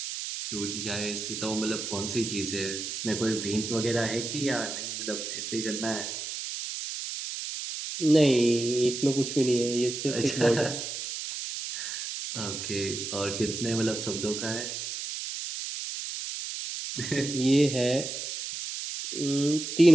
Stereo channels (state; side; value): noise; right; hiss, 6 dB below the sound